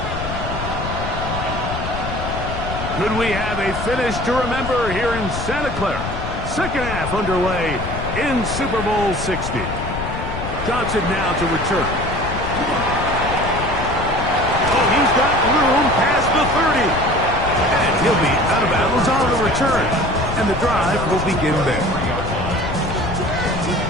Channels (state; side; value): noise; left; rumble, 6 dB below the sound